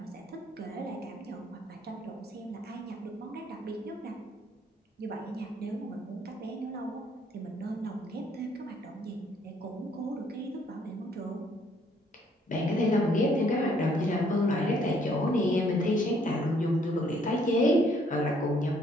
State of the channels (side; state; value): both; normal; correlation 0.65